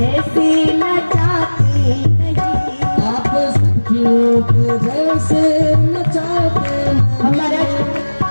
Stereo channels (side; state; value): both; inverted; correlation -1.00